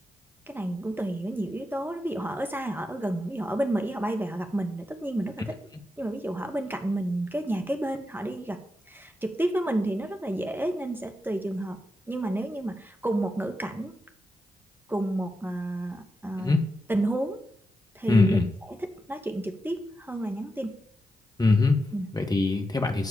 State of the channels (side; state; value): both; normal; correlation 0.88